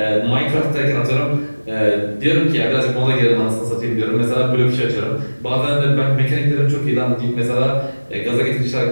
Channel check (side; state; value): both; inverted; correlation -1.00